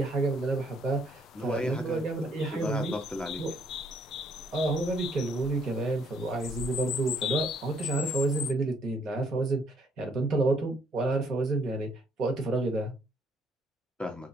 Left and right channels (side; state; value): both; normal; correlation 0.67